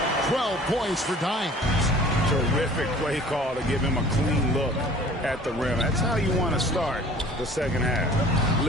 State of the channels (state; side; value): normal; both; correlation 0.48